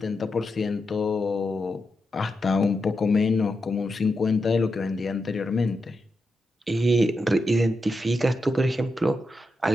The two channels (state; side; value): normal; both; correlation 0.86